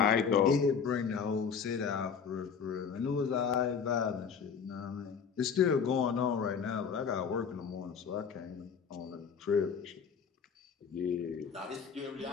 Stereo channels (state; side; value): quieter; right; 6.5 dB